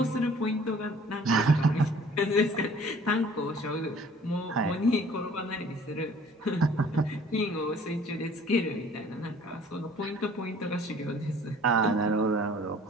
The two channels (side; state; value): both; normal; correlation 0.53